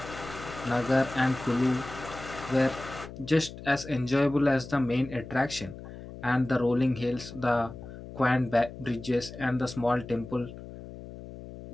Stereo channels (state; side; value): noise; left; hum, 13 dB below the sound